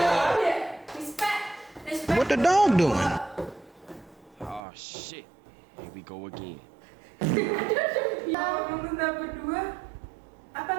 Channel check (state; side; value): drops out; left; at 4.6 s